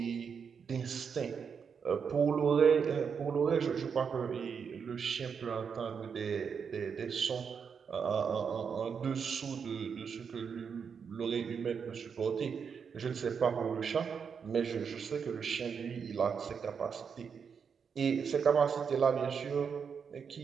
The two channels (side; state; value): left; quieter; 6.5 dB